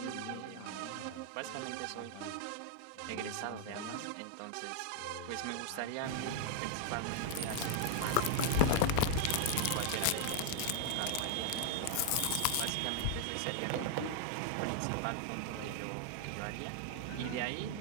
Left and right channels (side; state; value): both; different; correlation 0.00